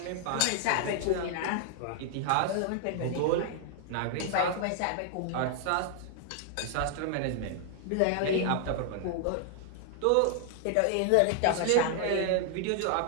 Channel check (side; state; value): both; different; correlation 0.00